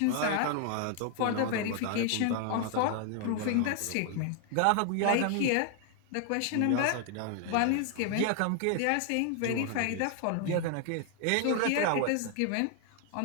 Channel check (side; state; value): both; different; correlation 0.00